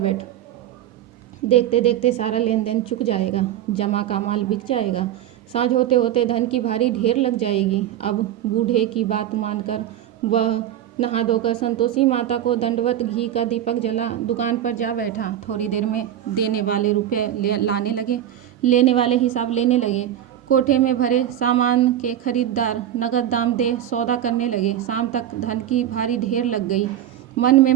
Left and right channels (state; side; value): quieter; left; 11.3 dB